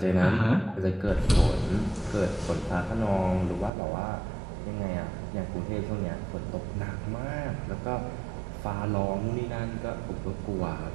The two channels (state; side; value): drops out; left; at 3.7 s